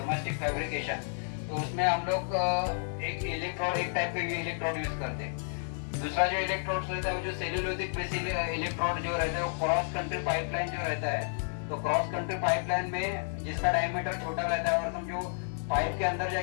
फैब्रिकेशन, तो उसमें हम लोग एक इलेक्ट्रोड, एक टाइप के इलेक्ट्रोड यूज करते हैं। दूसरा जो इलेक्ट्रोड रहता है वो जो सेल्यूलोजिक बेस इलेक्ट्रोड जो रहता है वो क्रॉस कंट्री पाइपलाइन जो रहता है, तो क्रॉस कंट्री पाइपलाइन में जिसका डायमीटर छोटा रहता है और समझो पाइप के अंदर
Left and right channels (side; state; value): right; silent; digital silence